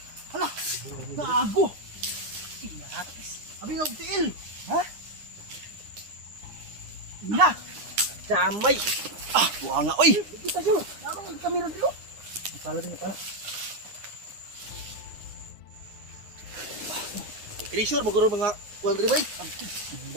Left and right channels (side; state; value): left; late; 9.8 ms